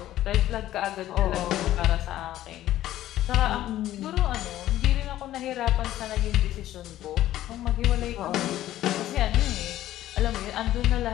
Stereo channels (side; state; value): right; quieter; 13.6 dB